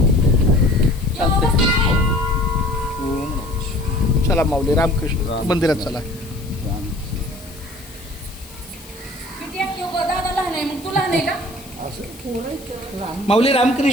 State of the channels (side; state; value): left; noise; hiss, 20 dB below the sound